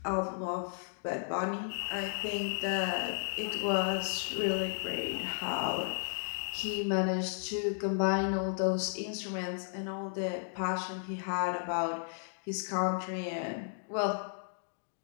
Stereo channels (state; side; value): silent; right; digital silence